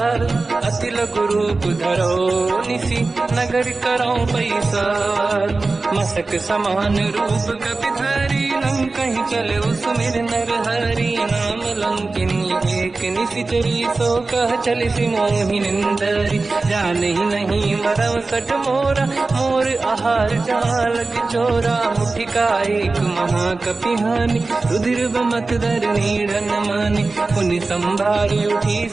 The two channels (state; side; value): quieter; left; 3.6 dB